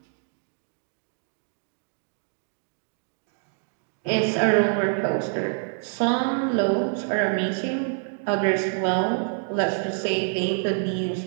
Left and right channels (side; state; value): left; silent; 61 dB below the other